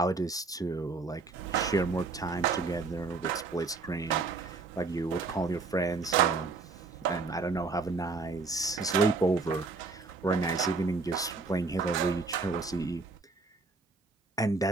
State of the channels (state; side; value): quieter; left; 4.0 dB